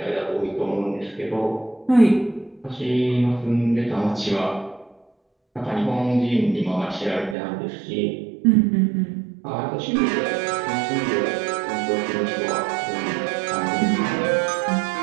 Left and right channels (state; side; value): drops out; left; at 7.4 s